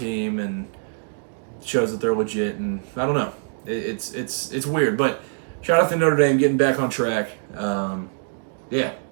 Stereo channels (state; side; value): silent; left; digital silence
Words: and shows that they're legit. And I don't know. It's weird. But shout out to Notre Dame getting back on track. Yeah,